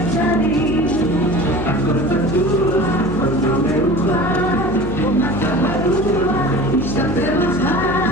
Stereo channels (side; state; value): left; noise; hum, 6 dB below the sound